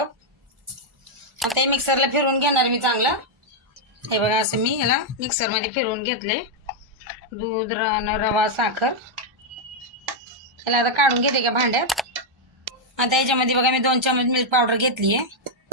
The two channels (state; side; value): normal; both; correlation -0.01